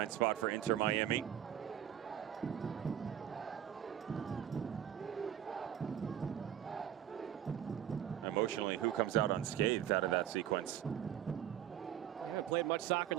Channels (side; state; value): left; quieter; 10.6 dB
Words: spot for Inter Miami. Emotionally, who comes out unscathed out of that sequence? We haven't played much soccer in